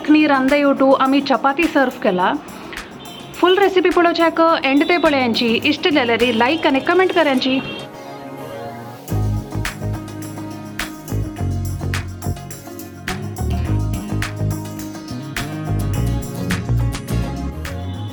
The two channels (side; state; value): both; identical; correlation 1.00